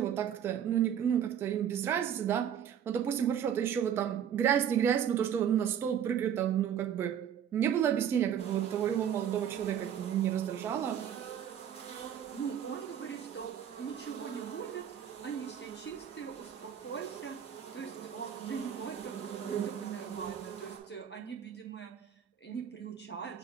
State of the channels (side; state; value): left; quieter; 9.1 dB